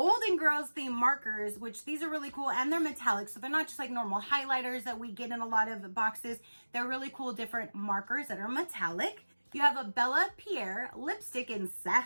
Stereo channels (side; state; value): both; inverted; correlation -1.00